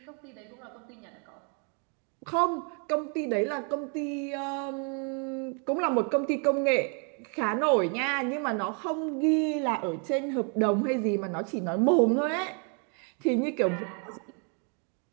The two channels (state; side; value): quieter; left; 39.1 dB